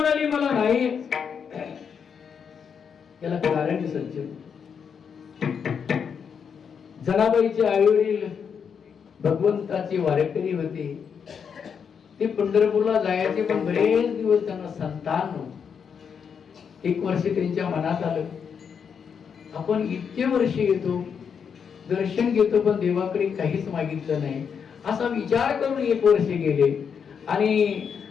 मला नाही. याला कारण सज्जन, जनाबाईचे आई वडील भगवंताचे वारेकरी होते. ते पंढरपूरला जायचे, पण बरेच दिवस त्यांना संतान नव्हते. एक वर्ष त्यांच्या मनात आलं आपण इतके वर्ष येतो, दर्शन घेतो, पण देवाकडे काहीच मागितलं नाही. असा विचार करून एक वर्ष गेले आणि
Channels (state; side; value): quieter; right; 6.9 dB